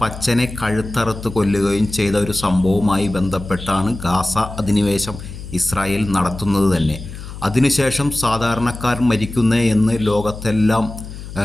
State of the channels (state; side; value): noise; left; hum, 12 dB below the sound